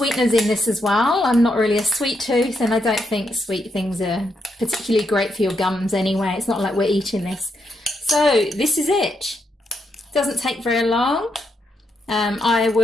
in this as well. I'm not really a sweet tooth, and I don't think sweet things are particularly great for your gums anyway. It's not like we're eating this. So this is it. Doesn't take very long. I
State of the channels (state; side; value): normal; both; correlation 0.80